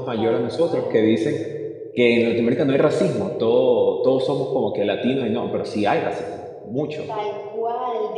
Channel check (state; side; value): identical; both; correlation 1.00